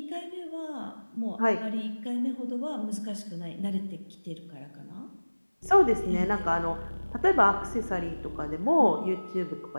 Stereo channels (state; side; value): inverted; both; correlation -1.00